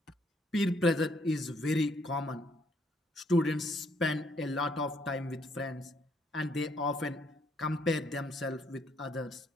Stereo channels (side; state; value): both; normal; correlation 0.69